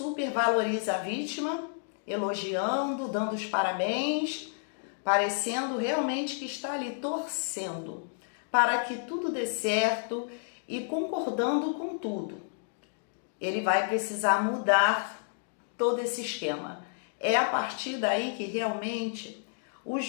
a vítima, elogiando, dando os parabéns, parecendo realmente que está ali torcendo para que tudo dê certo e concordando com tudo. Ele vai precisar mudar todo esse esquema. É a partir daí que realmente o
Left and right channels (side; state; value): right; silent; digital silence